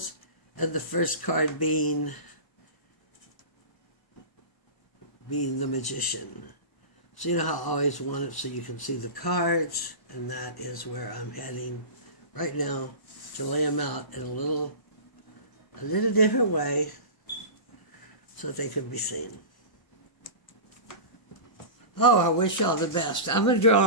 and the first card being the magician. So you know how I always want it so you can see the cards, and that is where I'm heading right now to lay them out in a little different way so that they can be seen. Oh, I wish y'all the best. I'm going to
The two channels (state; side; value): late; right; 1.0 ms